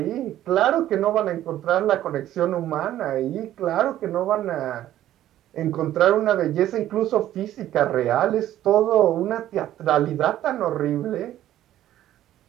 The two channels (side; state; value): left; quieter; 12.9 dB